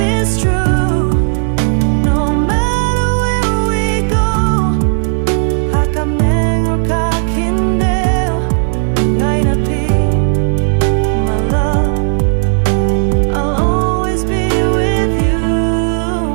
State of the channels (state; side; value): silent; left; digital silence